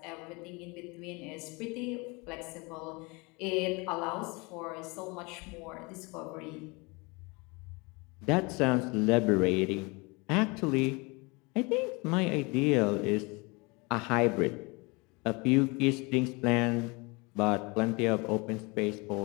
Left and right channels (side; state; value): right; quieter; 27.5 dB